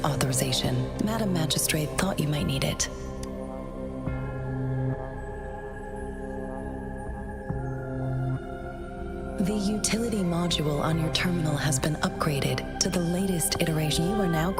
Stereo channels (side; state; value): both; identical; correlation 1.00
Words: authorization. Madam Magistrate thought you might need it. The utility module on your terminal has been upgraded to the latest iteration. You are now